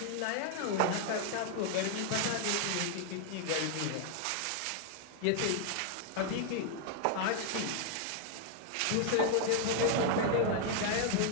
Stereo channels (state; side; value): different; both; correlation 0.00